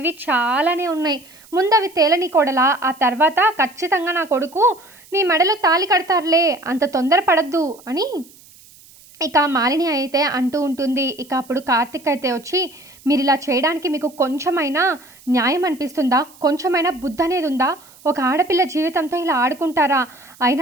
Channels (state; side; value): noise; right; hiss, 25 dB below the sound